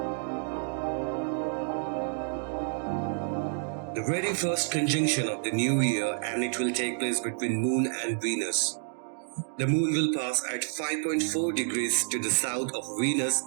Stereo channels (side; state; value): left; silent; 58 dB below the other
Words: The very first conjunction of the new year, and it will take place between Moon and Venus. The Moon will pass at 5.4 degrees to the south of Venus